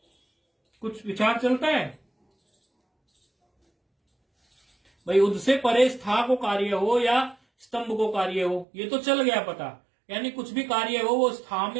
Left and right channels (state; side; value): drops out; left; at 8.7 s